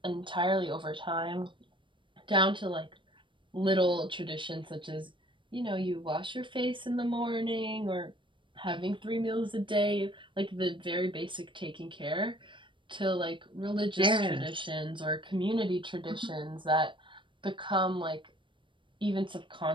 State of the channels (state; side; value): late; left; 0.24 ms